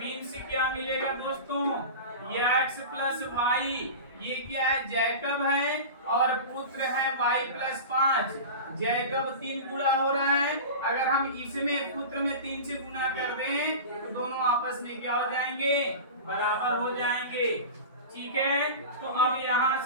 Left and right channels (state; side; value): inverted; both; correlation -0.30